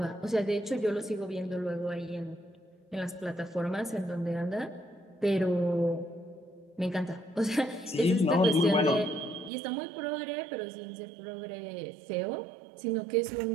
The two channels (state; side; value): drops out; left; at 9.5 s